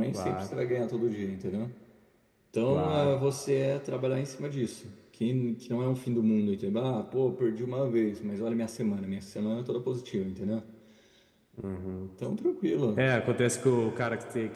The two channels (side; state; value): both; identical; correlation 1.00